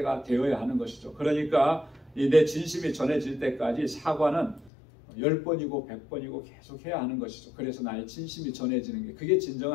되어야 하는 것이죠. 그러니까 내 진심이 전해질 때까지 사과는 10번이고 100번이고 계속 해야 하는 것이죠. 그래서 나의 진심이 전해지는 게 그게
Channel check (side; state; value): right; drops out; at 4.7 s